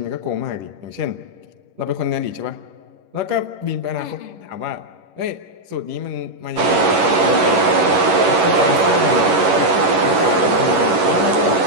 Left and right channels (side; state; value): left; late; 11 ms